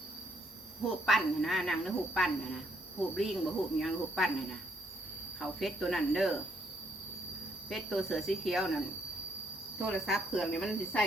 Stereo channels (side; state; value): both; normal; correlation 0.71